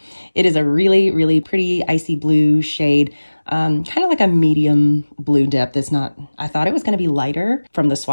It is a really pretty icy blue shade, kind of like a medium blue depth. It's not, I thought it was going to be lighter from the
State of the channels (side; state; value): both; inverted; correlation -1.00